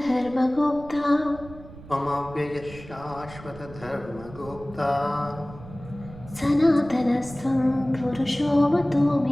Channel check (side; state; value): right; noise; rumble, 17 dB below the sound